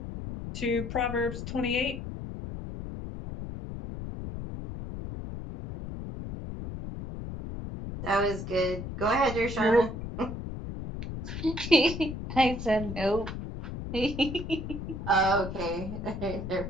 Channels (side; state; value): left; noise; rumble, 7 dB below the sound